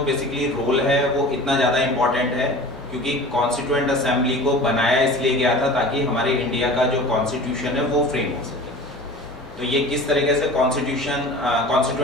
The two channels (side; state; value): both; normal; correlation 0.39